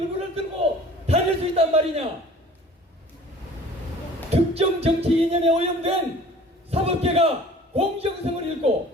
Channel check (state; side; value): normal; both; correlation 0.48